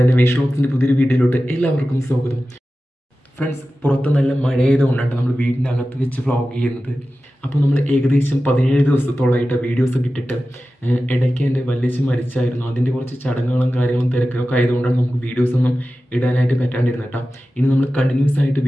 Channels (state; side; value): normal; both; correlation 0.94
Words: എൻ്റെ വേഷ് വ്ളോഗ്സിൻ്റെ പുതിയൊരു വീഡിയോയിലോട്ട് എല്ലാവർക്കും സ്വാഗതം. ഫ്രണ്ട്സ്, പുറത്ത് നല്ല മഴയായതുകൊണ്ടാണ് നമ്മൾ വീടിൻ്റെ അകത്ത് വെച്ച് വ്ളോഗ് ചെയ്യുന്നത്. അപ്പോൾ നമ്മൾ ഏകദേശം 17 ദിവസത്തോളമായിട്ട് വീഡിയോസൊക്കെ ഇട്ടിട്ട് ഇടയ്ക്ക് എൻ്റെ വല്യച്ഛൻ മരിച്ചായിരുന്നു. അതിൻ്റെ കുറച്ച് ചടങ്ങുകളും കാര്യങ്ങളും തിരക്കൊക്കെ ആയതുകൊണ്ടാണ് നമുക്ക് വീഡിയോസൊന്നും ഇടാനായിട്ട് പറ്റാണ്ടിരുന്നത് കേട്ടോ. ഇനി നമ്മൾ കണ്ടിന്യൂസ് ആയിട്ട്